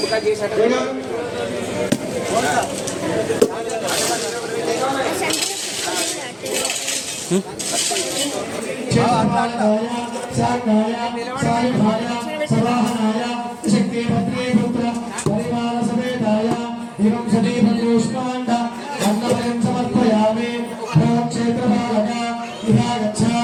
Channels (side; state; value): both; identical; correlation 1.00